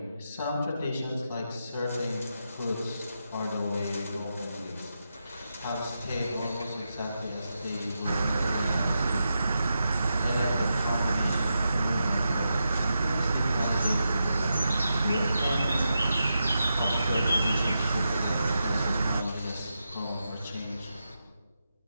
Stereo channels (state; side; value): inverted; both; correlation -0.87